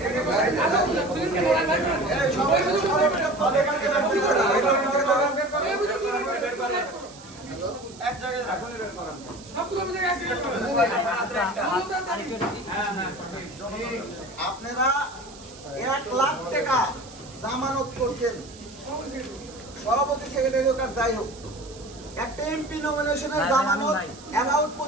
আপনারা 1 লাখ টাকা জামানত করছেন, সভাপতি সেক্রেটারি হোক আর যাই হোক, একটা এমপি নমিনেশনের জামানত অ্যাবাউট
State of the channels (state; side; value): noise; right; hiss, 19 dB below the sound